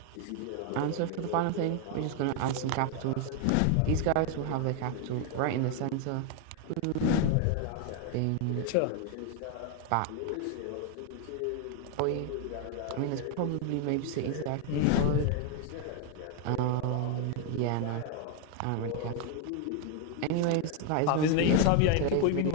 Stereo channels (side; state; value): both; different; correlation 0.01